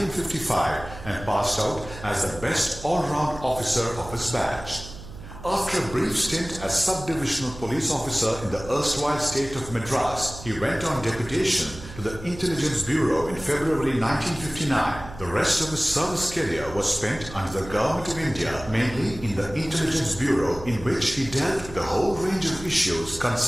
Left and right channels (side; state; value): right; noise; hum, 14 dB below the sound